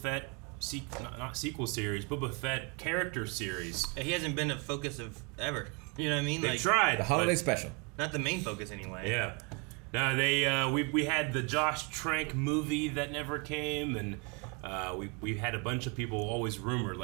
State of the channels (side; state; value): left; quieter; 31.3 dB